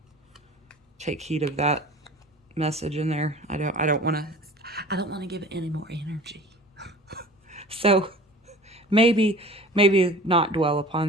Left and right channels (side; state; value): both; normal; correlation 0.42